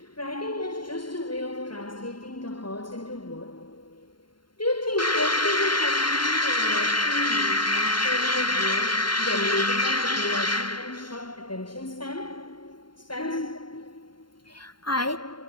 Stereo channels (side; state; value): right; late; 0.72 ms